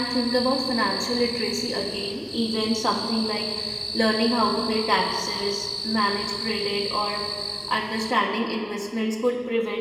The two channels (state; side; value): identical; both; correlation 1.00